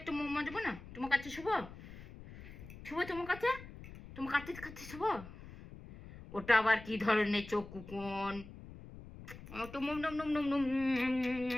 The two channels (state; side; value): noise; left; rumble, 15 dB below the sound